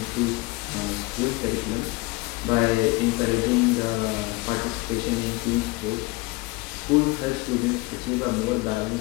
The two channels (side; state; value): right; quieter; 23.4 dB